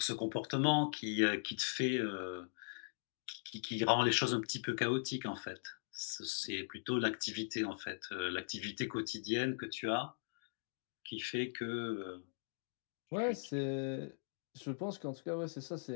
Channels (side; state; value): right; silent; digital silence